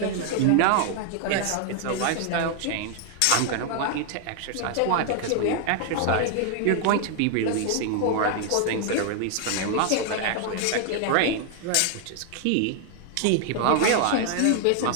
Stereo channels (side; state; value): both; different; correlation 0.00